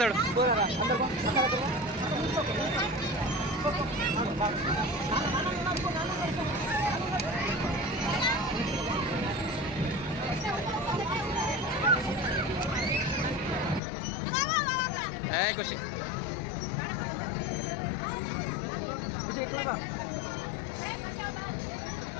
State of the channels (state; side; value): drops out; right; at 13.8 s